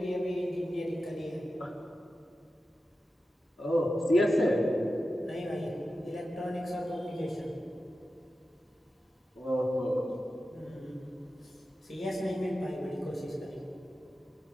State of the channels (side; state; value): both; normal; correlation 0.92